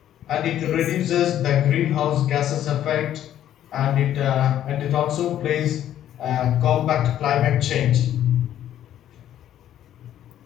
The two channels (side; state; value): right; quieter; 11.4 dB